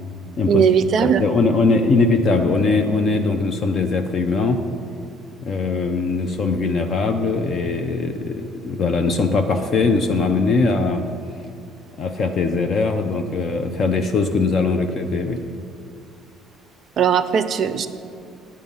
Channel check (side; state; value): both; normal; correlation 0.58